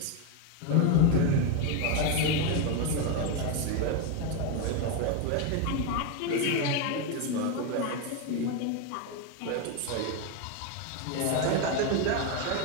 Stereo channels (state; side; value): different; both; correlation 0.02